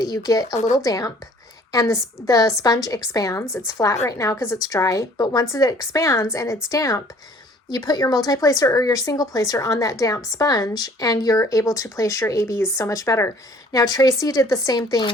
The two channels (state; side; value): normal; both; correlation 0.55